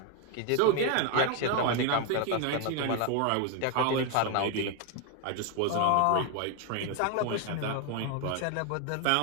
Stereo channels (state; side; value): different; both; correlation 0.01